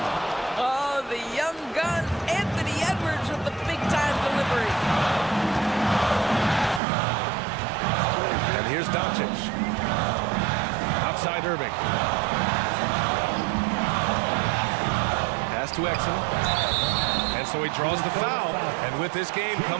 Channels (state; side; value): drops out; left; at 6.8 s